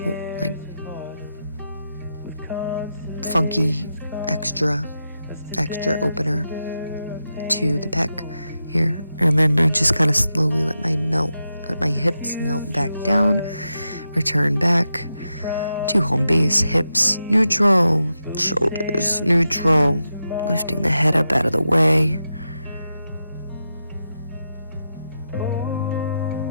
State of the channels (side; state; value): both; inverted; correlation -0.88